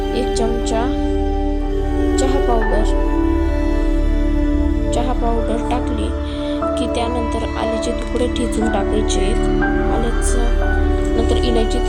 1 चमचा चहा पावडर टाकली की त्यानंतर आल्याचे तुकडे ठेचून टाकायचे. आल्याचं नंतर इलायची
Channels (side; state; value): both; identical; correlation 1.00